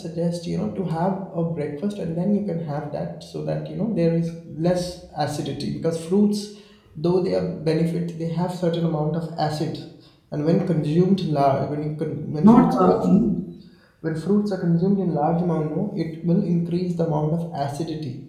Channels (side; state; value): both; identical; correlation 1.00